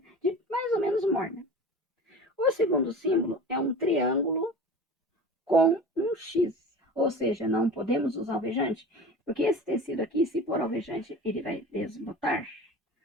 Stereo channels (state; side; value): normal; both; correlation 0.36